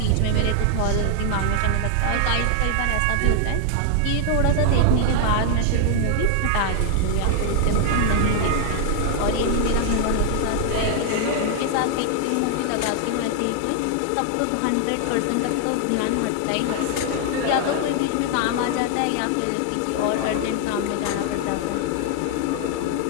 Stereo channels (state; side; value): different; both; correlation 0.00